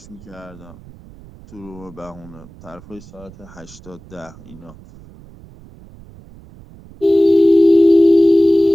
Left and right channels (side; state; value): right; noise; rumble, 22 dB below the sound